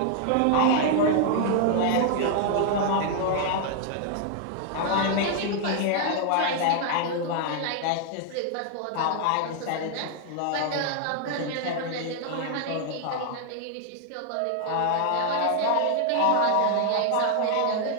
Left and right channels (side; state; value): both; different; correlation 0.00